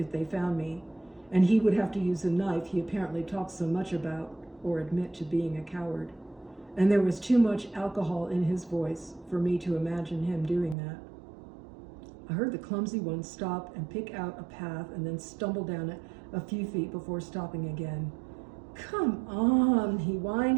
they found me, and he would have to use a knife he apparently talked so much about, or admit to being a coward. And there was too much alcohol in his voice for me to imagine him doing that. I heard the clumsy one stop and pick out a path and then stumble down it a few feet before stopping again. "Come on," he whined.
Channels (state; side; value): drops out; left; at 10.8 s